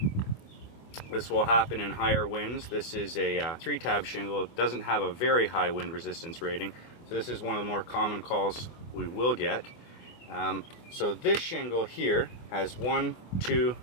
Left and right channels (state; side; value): late; right; 25 ms